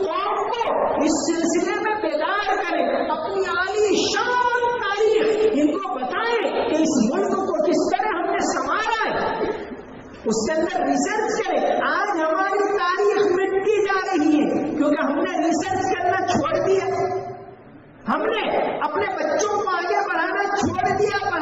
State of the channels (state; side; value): identical; both; correlation 1.00